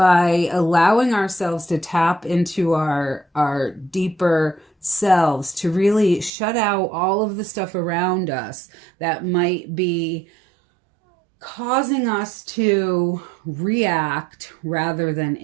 allowing ourselves to tap into our deeper selves, to really shut out all of the stuff around us that might be causing us to react rather than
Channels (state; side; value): drops out; left; at 6.3 s